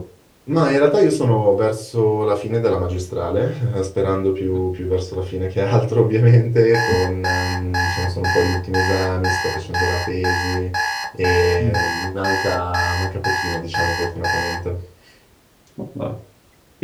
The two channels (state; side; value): identical; both; correlation 1.00